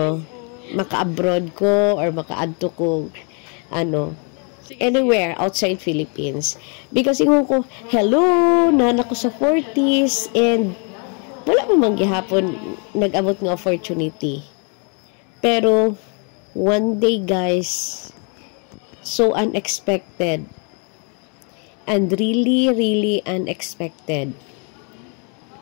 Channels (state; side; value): quieter; right; 37.4 dB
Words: maka-abroad ko or maka-adto ko, anywhere outside Philippines. Because ingon ko, hello, nana ko sa 40s, and wala mo manggihapon nag-abot ng opportunity. Pero, one day guys, so unexpected, and really, really unexpected.